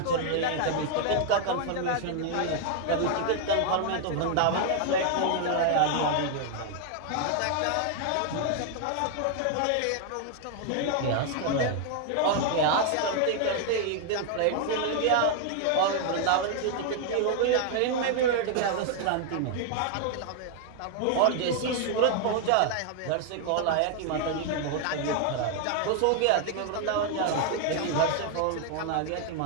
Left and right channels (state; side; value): different; both; correlation 0.00